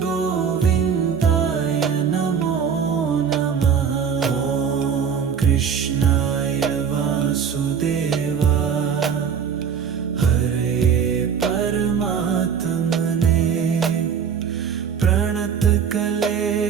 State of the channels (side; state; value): left; quieter; 7.0 dB